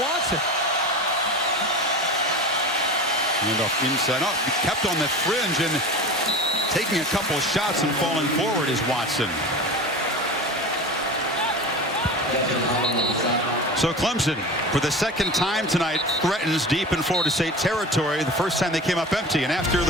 Handoff inside. Oh, kept on the fringe and taking a couple of shots and falling forward is Watson. So Clemson, for the second time tonight, threatens deep in Florida State territory. The first time they came up empty, and after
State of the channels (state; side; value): normal; both; correlation 0.32